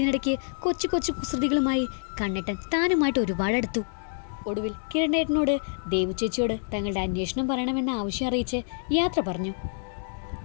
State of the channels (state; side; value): silent; right; 60 dB below the other